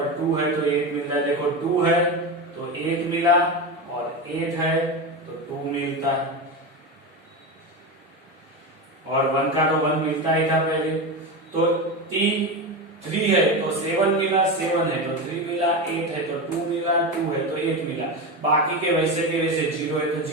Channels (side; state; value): both; normal; correlation 0.19